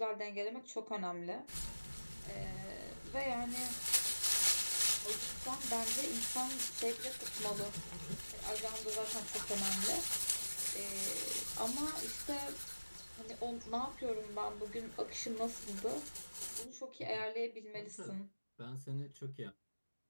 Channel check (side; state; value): both; inverted; correlation -1.00